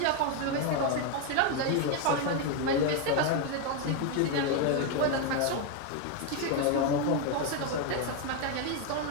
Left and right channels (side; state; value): both; different; correlation 0.01